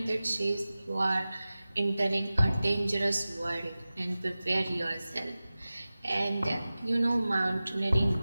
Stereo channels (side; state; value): both; inverted; correlation -0.96